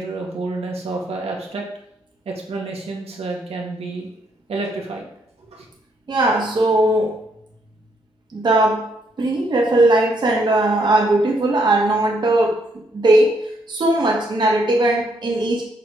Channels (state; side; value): normal; both; correlation 0.73